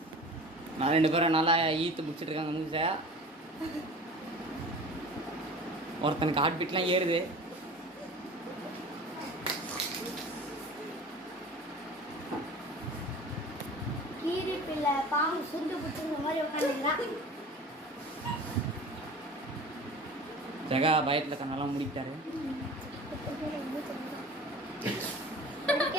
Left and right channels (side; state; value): both; normal; correlation 0.39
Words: நான் 2 பேரும் நல்லா ஈத்து முடிச்சிட்டு இருக்காங்க மூஞ்ச. ஒருத்தனுக்கு ஹார்ட் பீட்லாம் ஏறுது. கீரி பிள்ளை பாம்பு சுண்டு புடிச்ச மாதிரி உட்காந்துக்கிறான். ஜெகா பயத்துல கண்ணெல்லாம் முடிக்கிட்டாரு.